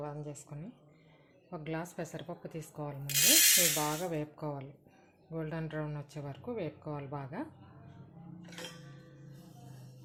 ఆన్ చేసుకొని ఒక గ్లాస్ పెసరపప్పు తీసుకోవాలి. ముందు ఇవి బాగా వేపుకోవాలి, గోల్డెన్ బ్రౌన్ వచ్చే వరకు వేపుకోవాలి బాగా.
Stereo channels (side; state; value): both; identical; correlation 1.00